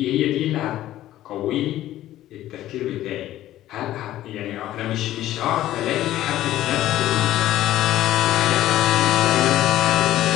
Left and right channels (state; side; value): quieter; right; 13.9 dB